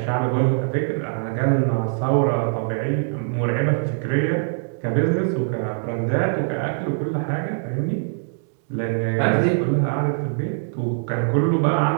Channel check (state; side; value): silent; left; digital silence